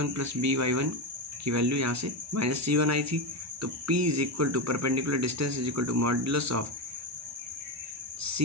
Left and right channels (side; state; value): both; normal; correlation 0.13